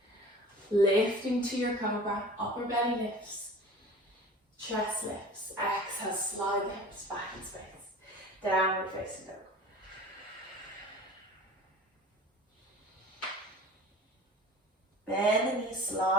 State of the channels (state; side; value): normal; both; correlation 0.42